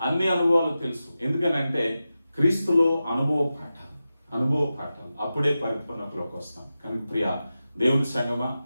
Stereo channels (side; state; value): both; inverted; correlation -0.93